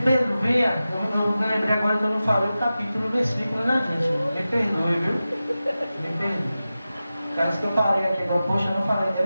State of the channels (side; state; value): both; inverted; correlation -0.94